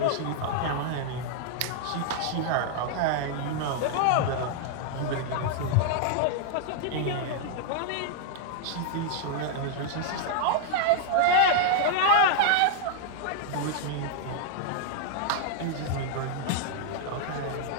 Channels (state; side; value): different; both; correlation -0.01